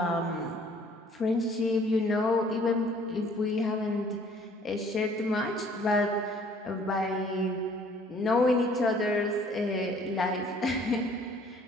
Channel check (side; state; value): both; normal; correlation 0.57